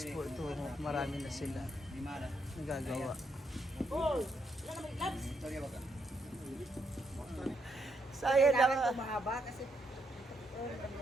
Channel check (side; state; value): both; normal; correlation 0.77